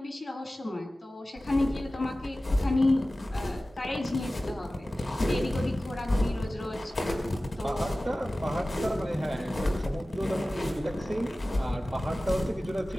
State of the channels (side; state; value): both; normal; correlation 0.96